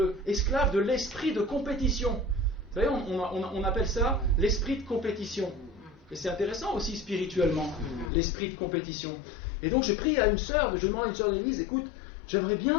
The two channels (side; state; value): right; drops out; at 8.1 s